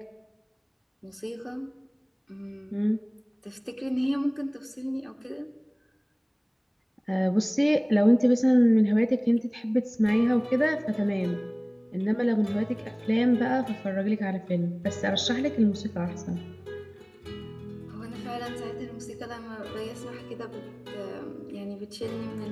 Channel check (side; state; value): both; identical; correlation 1.00